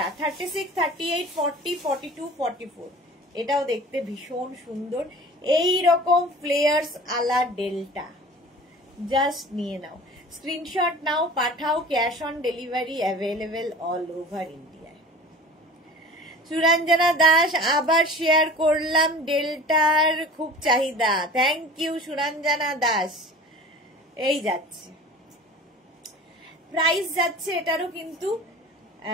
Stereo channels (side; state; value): both; normal; correlation 0.41